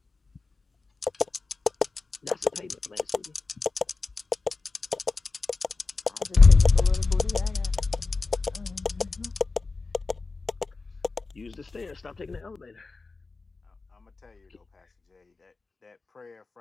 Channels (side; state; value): right; quieter; 3.9 dB